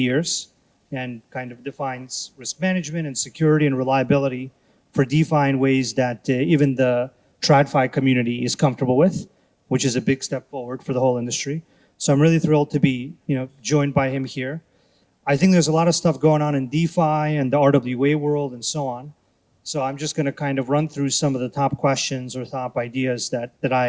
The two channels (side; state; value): both; identical; correlation 1.00